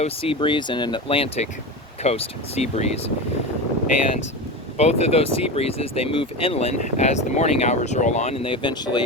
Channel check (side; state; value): both; normal; correlation 0.23